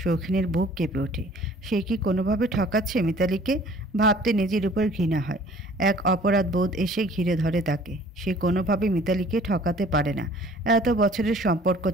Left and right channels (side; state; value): both; normal; correlation 0.52